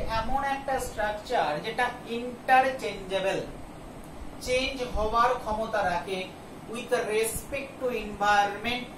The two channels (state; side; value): identical; both; correlation 1.00